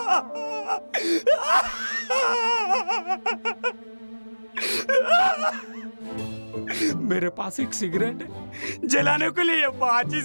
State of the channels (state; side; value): inverted; both; correlation -1.00